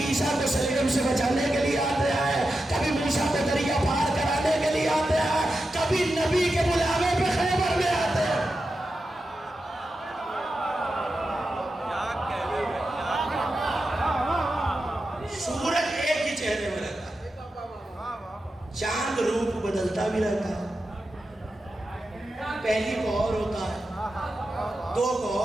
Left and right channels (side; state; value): both; normal; correlation 0.90